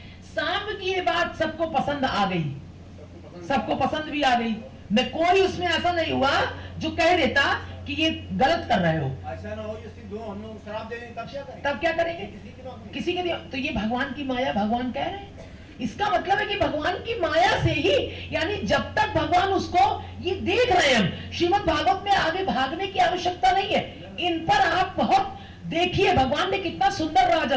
सांप की ये बात सबको पसंद आ गई, सबको पसंद भी आ गई। न कोई उसमें ऐसा नहीं हुआ जो कह देता कि ये गलत कर रहे हो। ऐसा ना हो ये सिद्ध हो, हम लोग शराब दे दें तब क्या करेंगे? तब क्या करेंगे? किसी के तो ये भगवान की माया, भगवान कह रहे हैं। इसका मतलब है कि भगवान की माया से ही, यानी जब तक भगवान उसको ये देख रहे हैं, हम श्रीमद् भागवत में आगे भागने की आवश्यकता नहीं है। इन पर आप बहुत देखिए, भगवान ने कितना सुंदर राज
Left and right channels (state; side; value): identical; both; correlation 1.00